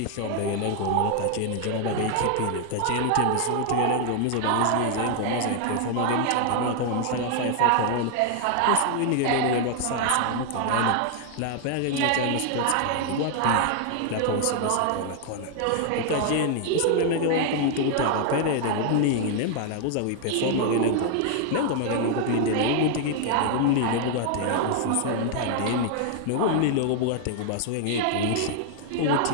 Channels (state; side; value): different; both; correlation 0.00